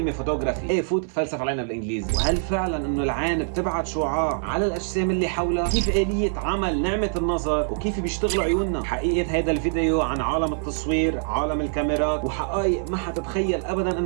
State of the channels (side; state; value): left; silent; 58 dB below the other